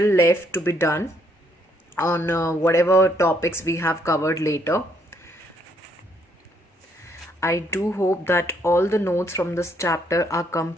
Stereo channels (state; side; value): normal; both; correlation 0.70